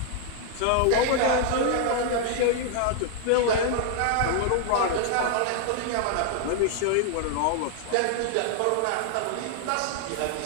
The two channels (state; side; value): different; both; correlation 0.00